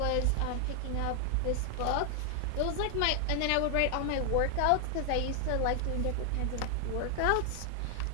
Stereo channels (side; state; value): both; different; correlation 0.00